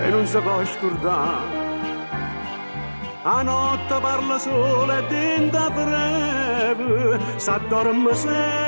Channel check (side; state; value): both; inverted; correlation -1.00